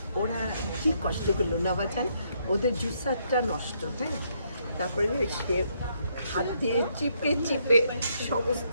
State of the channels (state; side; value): inverted; both; correlation -0.73